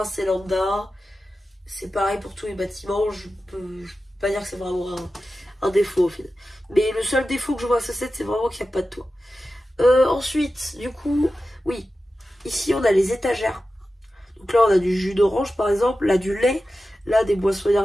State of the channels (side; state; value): both; normal; correlation 0.93